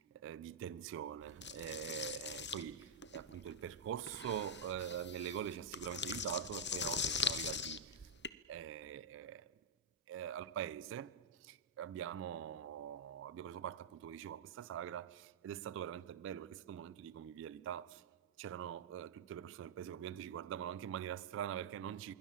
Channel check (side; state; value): left; quieter; 3.1 dB